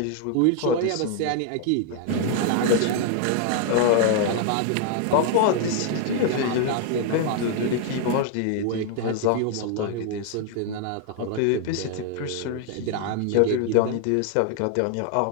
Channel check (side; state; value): both; different; correlation 0.00